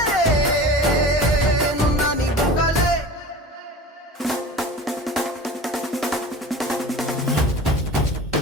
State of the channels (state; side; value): normal; both; correlation 0.37